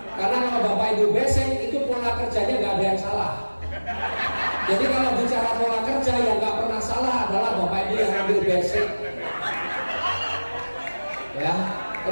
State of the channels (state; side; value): inverted; both; correlation -1.00